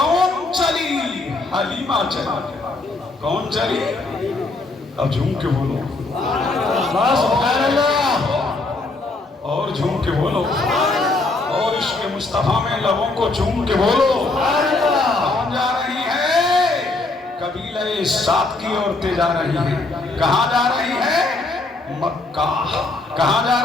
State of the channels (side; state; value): right; quieter; 3.2 dB